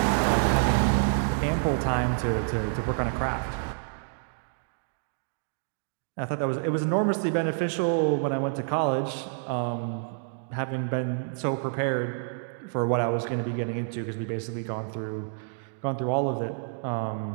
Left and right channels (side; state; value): left; silent; digital silence